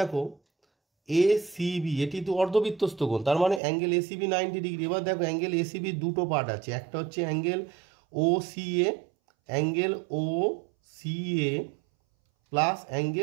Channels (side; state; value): left; drops out; at 3.6 s